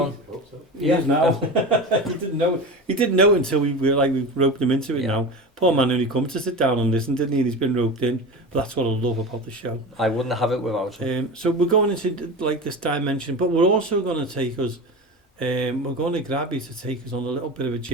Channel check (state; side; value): normal; both; correlation 0.27